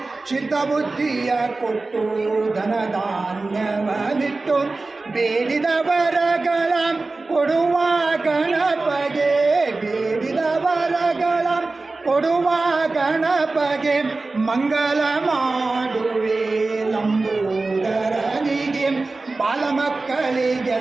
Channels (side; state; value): left; quieter; 3.5 dB